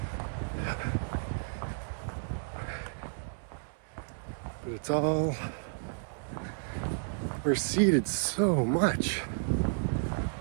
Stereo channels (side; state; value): left; silent; 56 dB below the other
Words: But it's all receded so much.